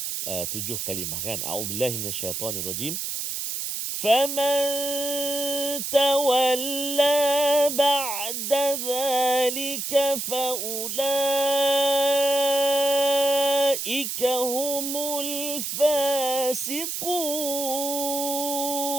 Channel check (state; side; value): noise; right; hiss, 3 dB below the sound